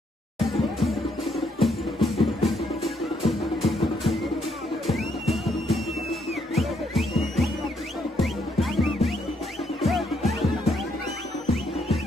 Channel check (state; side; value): normal; both; correlation 0.73